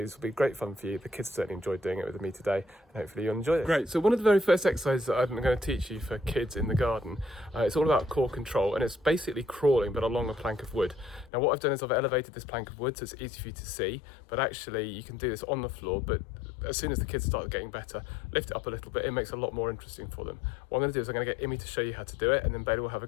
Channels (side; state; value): right; drops out; at 11.3 s